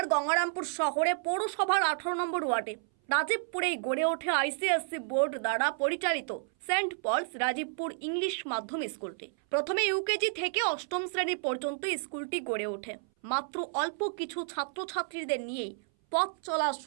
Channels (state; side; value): silent; left; 57 dB below the other